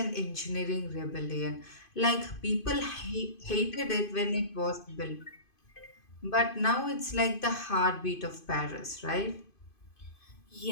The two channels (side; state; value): right; late; 2.5 ms